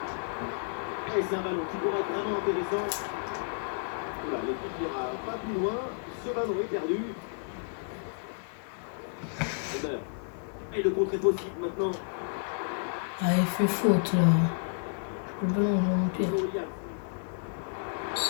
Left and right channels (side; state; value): right; silent; 57 dB below the other